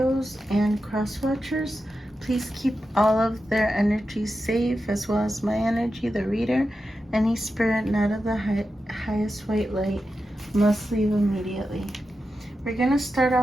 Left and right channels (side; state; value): both; normal; correlation 0.90